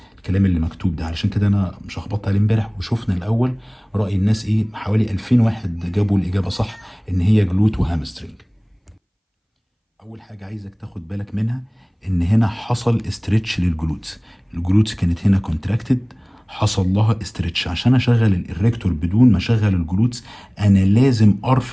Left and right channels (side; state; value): both; identical; correlation 1.00